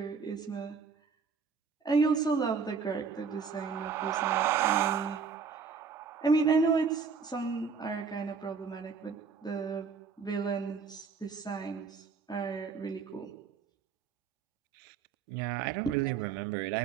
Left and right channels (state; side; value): quieter; left; 5.7 dB